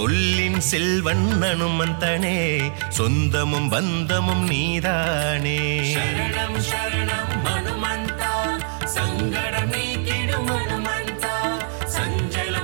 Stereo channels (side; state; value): left; silent; digital silence